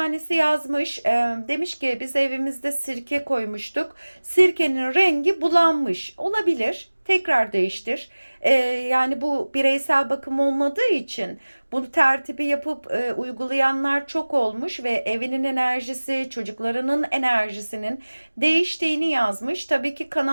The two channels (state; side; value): inverted; both; correlation -1.00